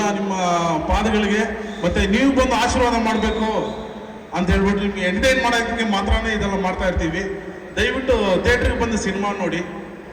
ನಿಮ್ಮ ಪಾದಗಳಿಗೆ, ಮತ್ತು ನೀವು ಬಂದು ಆಶೀರ್ವಾದ ಮಾಡಬೇಕು ಅಂತ ಹೇಳ್ಬಿಟ್ಟು ನಿಮಗೆ ಎಂಟರ್ಟೈನ್ ಮಾಡೋದಕ್ಕೆ ಮಾತ್ರನೇ ಇದೆಲ್ಲ ಮಾಡ್ತಾ ಇರ್ತೀವಿ. ದಯವಿಟ್ಟು ಥಿಯೇಟ್ರಿಗೆ ಬಂದು ಸಿನಿಮಾ ನೋಡಿ.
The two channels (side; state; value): both; identical; correlation 1.00